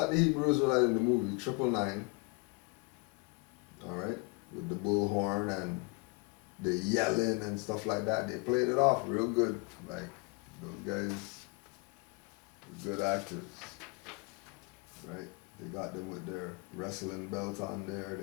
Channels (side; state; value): right; quieter; 29.1 dB